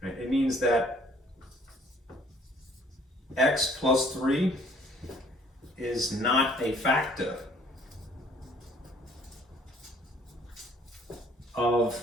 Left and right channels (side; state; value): both; normal; correlation 0.58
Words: right? It means that x plus 3 is not a factor of